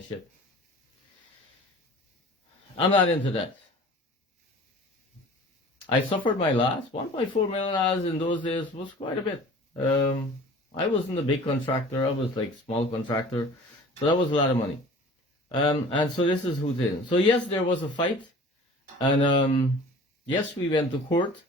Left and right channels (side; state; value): both; normal; correlation 0.44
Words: shit. I'm not into that. I suffered my loss. $1.4 million in those days was quite a bit. I wasn't a big contractor. I was like small contractor. So that was a lot of money. And so this is who's in. So yes, there was a fight. And yes, we went to court.